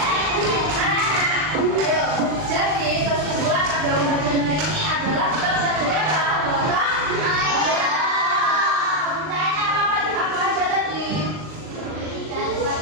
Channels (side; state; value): left; late; 39 ms